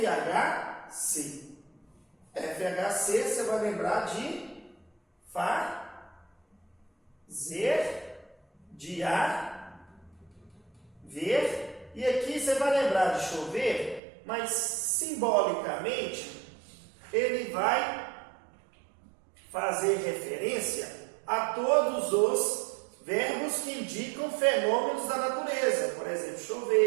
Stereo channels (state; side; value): drops out; left; at 14.0 s